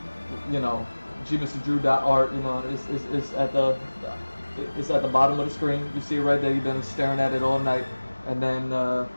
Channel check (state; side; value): inverted; both; correlation -1.00